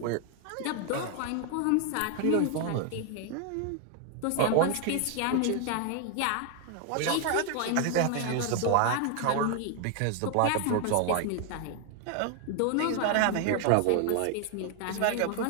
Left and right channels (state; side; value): different; both; correlation 0.00